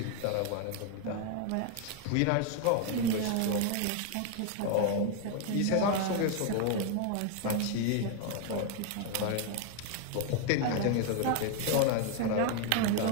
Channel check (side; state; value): both; different; correlation 0.01